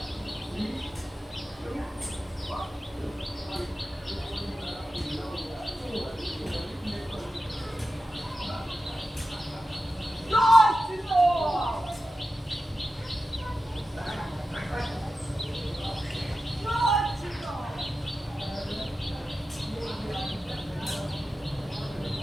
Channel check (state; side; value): normal; both; correlation 0.92